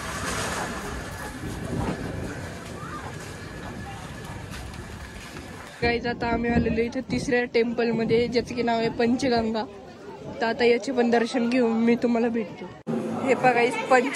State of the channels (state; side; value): identical; both; correlation 1.00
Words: गाईज आता आम्ही आलेलो इथे तिसऱ्या टेम्पल मध्ये ज्याचं की नाव आहे पंचगंगा. तर आता याचे पण दर्शन घेऊन मी तुम्हाला भेटतो. हे बघा